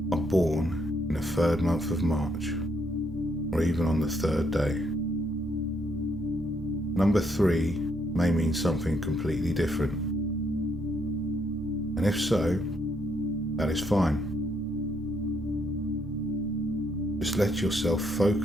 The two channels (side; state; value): both; normal; correlation 0.73